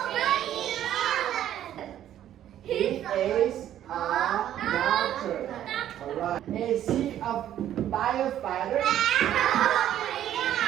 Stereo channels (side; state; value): left; quieter; 11.4 dB